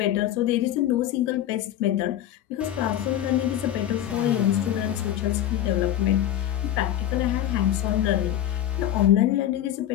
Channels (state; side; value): quieter; right; 11.7 dB